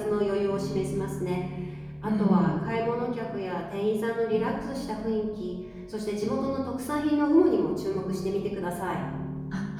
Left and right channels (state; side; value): identical; both; correlation 1.00